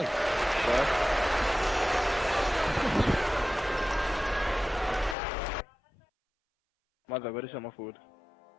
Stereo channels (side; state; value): right; drops out; at 5.2 s